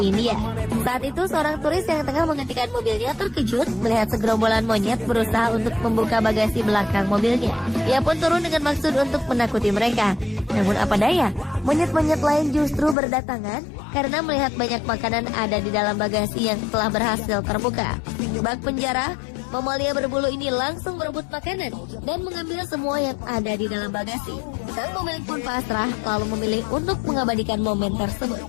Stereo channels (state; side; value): drops out; right; at 13.0 s